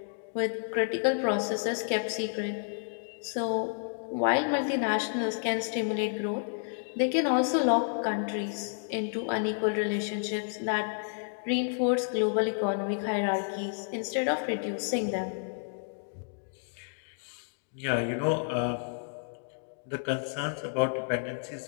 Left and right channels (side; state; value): right; silent; digital silence